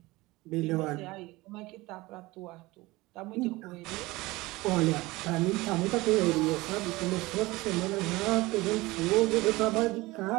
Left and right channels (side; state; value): left; quieter; 20.8 dB